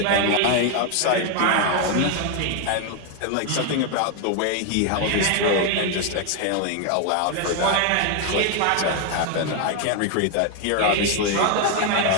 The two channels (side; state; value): both; different; correlation 0.01